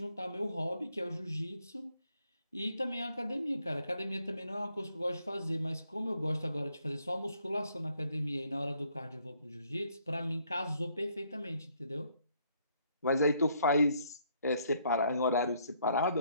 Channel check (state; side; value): inverted; both; correlation -0.69